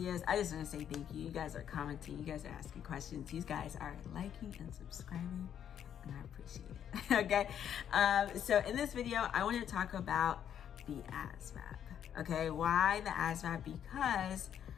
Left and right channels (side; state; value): right; quieter; 9.3 dB